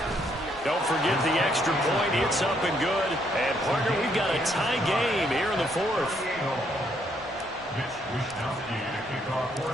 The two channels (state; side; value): normal; both; correlation 0.71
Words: Don't forget the extra point. It's up and good. And, partner, we've got a tie game here in the fourth.